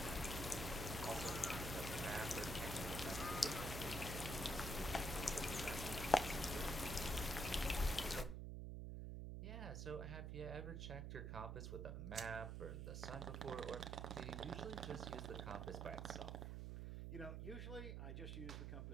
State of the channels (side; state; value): right; noise; hum, 4 dB below the sound